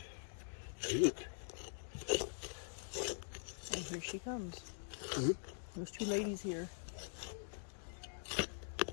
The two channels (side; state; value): right; silent; digital silence